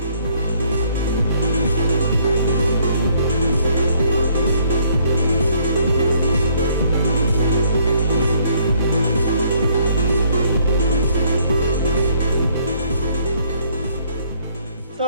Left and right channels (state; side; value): inverted; both; correlation -0.64